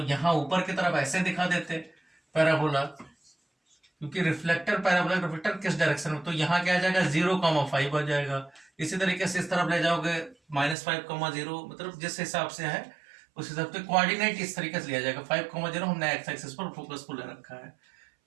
यहाँ ऊपर की तरफ ऐसे दिखा देते पैराबोला, क्योंकि रिफ्लेक्टर पैराबोला रिफ्लेक्टर किस डायरेक्शन में, तो यहाँ क्या आ जाएगा 0,5 आ जाएगा। इसी तरीके से इस तरफ ले जाओगे -5,0, मतलब जिस हिसाब से है उस हिसाब से कोऑर्डिनेट इस तरीके से लिया जाएगा। 5,0 हमने एक्स एक्सिस पर फोकस को ले रखा है।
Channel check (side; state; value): left; drops out; at 10.8 s